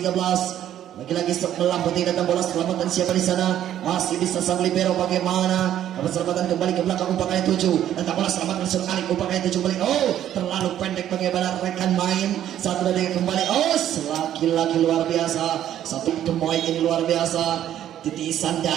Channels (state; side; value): quieter; left; 11.2 dB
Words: Lagi-lagi sebelah putih datang bola selamatan siapa di sana, masih bisa sang libero bagaimana. Dapat selamatan kembali ke belakang umpan kali 7. Datang bola selamatan Sur Alif, umpan kali 7 kembali. Terlalu pendek bagaimana rekan main. 1, 2, 3 kembali. Lagi-lagi luar biasa. Satu pemain ini luar biasa. titisan